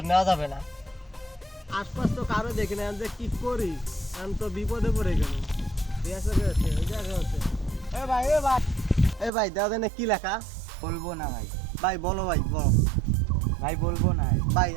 নেওয়া যাবে না। আশপাশ তো কারো দেখি না, যে কি করি? আমি তো বিপদে পড়ে গেল। এ ভাই, এ ভাই, এ ভাই দাদা না কি লেখা? বলবো না ভাই। ভাই বলো, ভাই বলো। ভাই বলবো না। ভাই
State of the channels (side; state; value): left; drops out; at 9.3 s